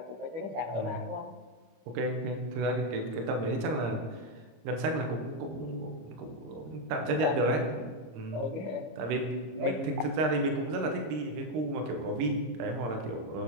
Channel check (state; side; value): late; left; 26 ms